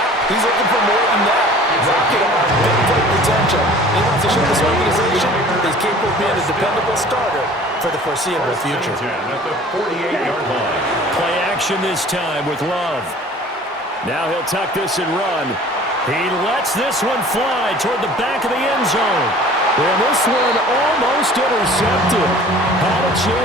he's looking for more than that. Rocket arm, big play potential. He wants to show this organization he's capable of being a dependable starter for the foreseeable future. At the 48-yard line. Play action this time with Love. Now he'll tuck this and run. He lets this one fly toward the back of the end zone. And this one almost intercepted. Had a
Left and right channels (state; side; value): normal; both; correlation 0.47